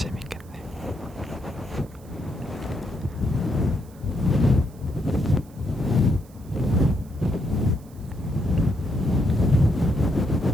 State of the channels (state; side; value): noise; right; hiss, 27 dB below the sound